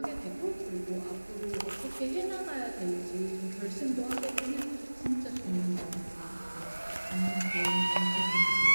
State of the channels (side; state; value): both; inverted; correlation -1.00